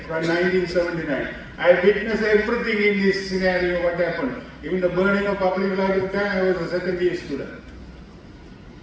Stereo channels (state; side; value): identical; both; correlation 1.00